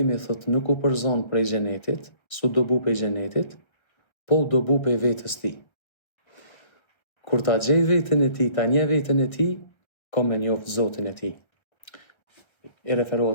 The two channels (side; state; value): right; late; 1.3 ms